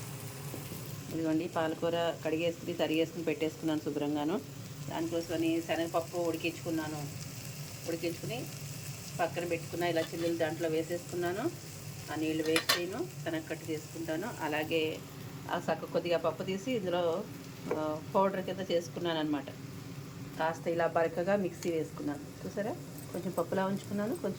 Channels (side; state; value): both; identical; correlation 1.00